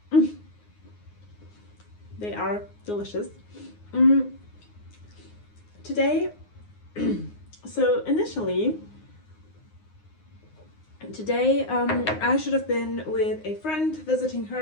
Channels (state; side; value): late; right; 9.6 ms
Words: They are delicious. Today, so initially, today I should have been with a friend visiting